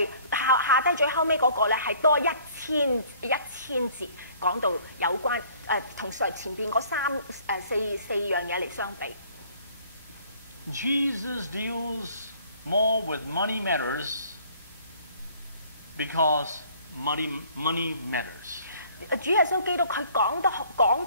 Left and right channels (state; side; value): inverted; both; correlation -0.56